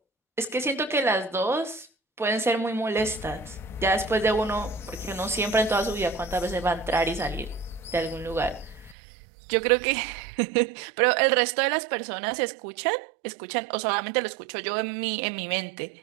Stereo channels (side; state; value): left; drops out; at 9.0 s